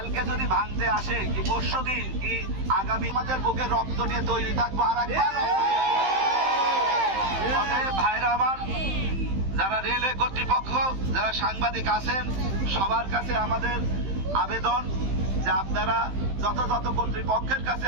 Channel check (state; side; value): late; left; 15 ms